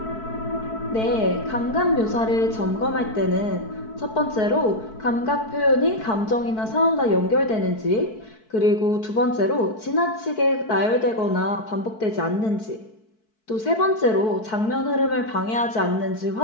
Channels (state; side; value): late; right; 4.6 ms